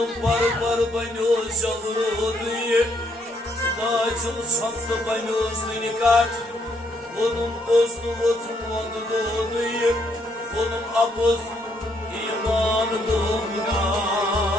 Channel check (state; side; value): normal; both; correlation 0.72